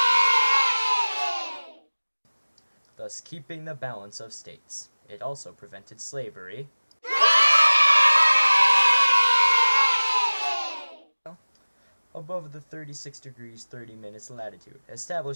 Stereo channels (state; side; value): inverted; both; correlation -1.00